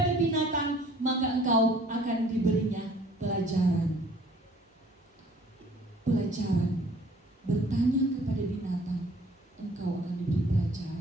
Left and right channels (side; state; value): both; normal; correlation 0.54